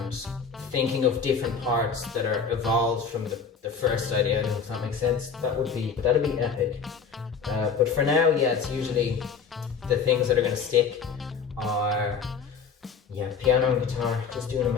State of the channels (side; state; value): right; quieter; 6.0 dB